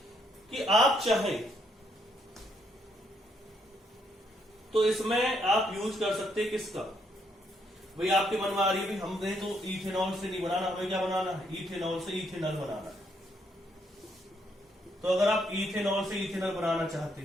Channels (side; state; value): both; normal; correlation 0.73